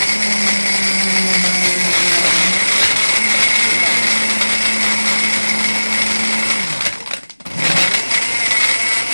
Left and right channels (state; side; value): inverted; both; correlation -1.00